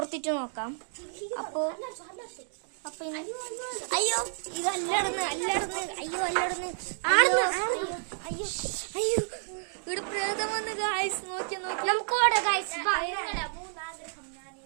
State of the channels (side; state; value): left; silent; digital silence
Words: നോക്കാം. അപ്പൊ അയ്യോ, ഇത് അല്ലടന്ന് അയ്യോ അല്ലടന്ന് അയ്യോ അയ്യോ, ഇവിടെ പ്രേതം വന്ന് ഗായ്സ്. നോക്കി നമുക്ക് ഓടാ ഗായ്സ്.